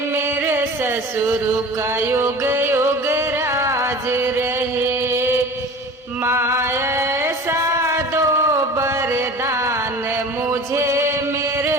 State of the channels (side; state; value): both; normal; correlation 0.39